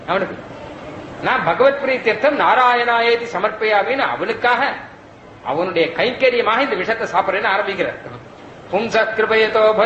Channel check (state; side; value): identical; both; correlation 1.00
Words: அவனுக்கு. நான் பகவத் பிரீத்தியர்த்தம் நாராயணாயேதி சமர்ப்பயாமின்னு அவனுக்காக அவனுடைய கைங்கரியமாக இந்த விஷத்தை சாப்பிடுறேன்னு ஆரம்பிக்கிறார். பும்ச கிருபயதோ